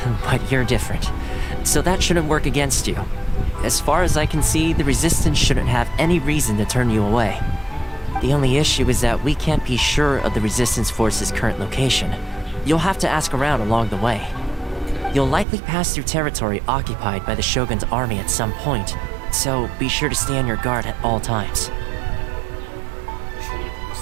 But you're different, so that shouldn't work against you. As far as I can see, the Resistance shouldn't have any reason to turn you away. The only issue is that we can't be sure of the Resistance Force's current location. You'll have to ask around along the way. You'll likely pass through territory occupied by the Shogun's army at some point, so be sure to stay on your guard at all times.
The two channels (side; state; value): left; drops out; at 15.5 s